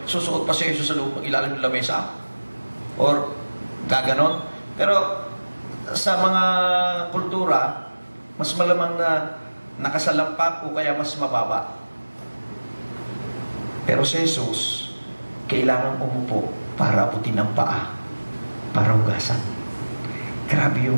susuot pa si Jesus sa loob ng ilalim ng lamesa. Or gaganon. Pero sa mga kultura, mas malamang na nakasalampak o kaya mas mababa. Pero si Jesus, kailangan umupo para abutin ang paa, para hugasan. Grabe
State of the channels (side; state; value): both; inverted; correlation -1.00